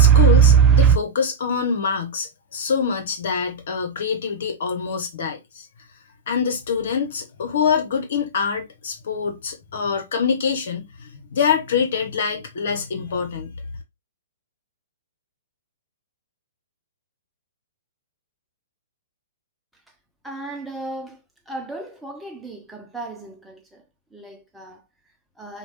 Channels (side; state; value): both; normal; correlation -0.13